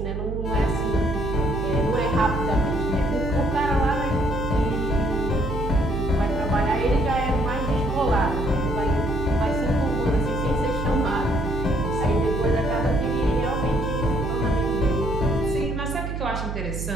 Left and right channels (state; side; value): noise; right; hum, 4 dB below the sound